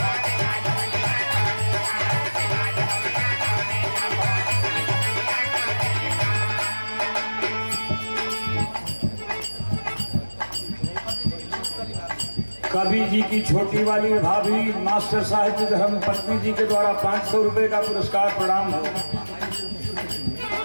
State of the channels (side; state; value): both; inverted; correlation -1.00